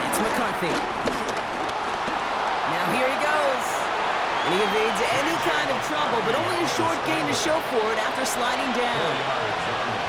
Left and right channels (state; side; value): identical; both; correlation 1.00